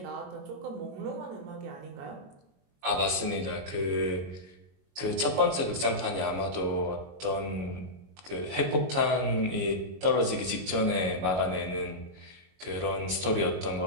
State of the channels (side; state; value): left; late; 22 ms